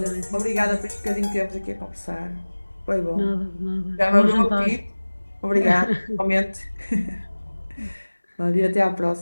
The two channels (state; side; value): inverted; both; correlation -1.00